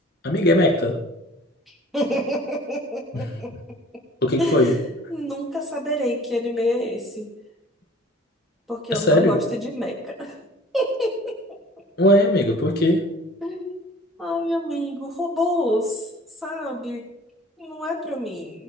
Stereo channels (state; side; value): normal; both; correlation 0.48